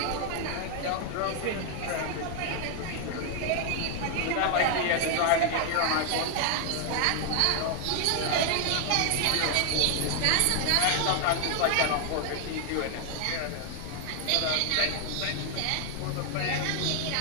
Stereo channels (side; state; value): both; different; correlation 0.00